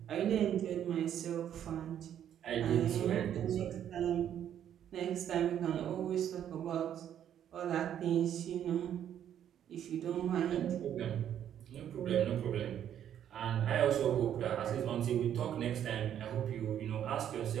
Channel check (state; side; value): quieter; left; 10.0 dB